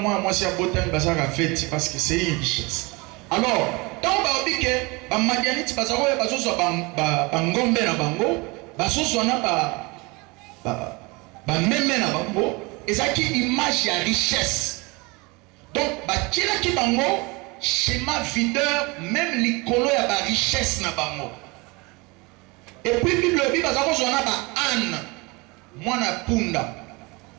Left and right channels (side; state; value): left; quieter; 25.9 dB